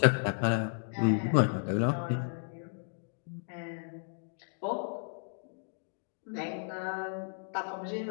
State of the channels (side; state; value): right; silent; digital silence